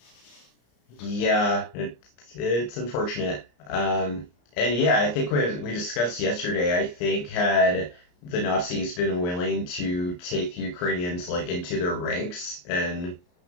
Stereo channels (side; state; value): right; late; 34 ms